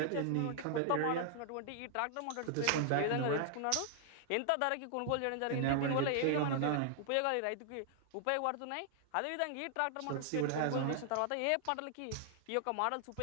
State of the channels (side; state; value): both; different; correlation -0.01